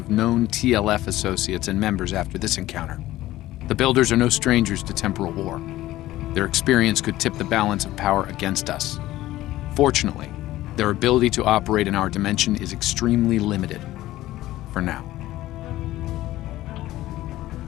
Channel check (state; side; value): quieter; right; 15.7 dB